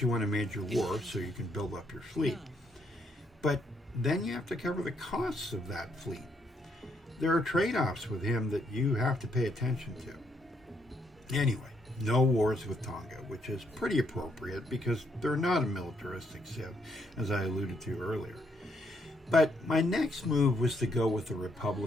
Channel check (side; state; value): both; normal; correlation 0.73